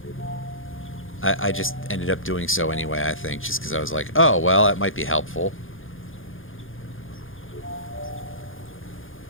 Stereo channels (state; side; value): late; right; 0.59 ms